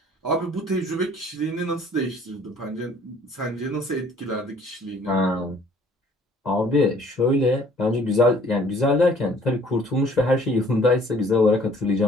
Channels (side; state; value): both; normal; correlation 0.57